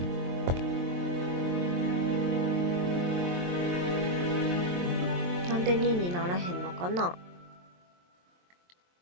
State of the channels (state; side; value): late; left; 23 ms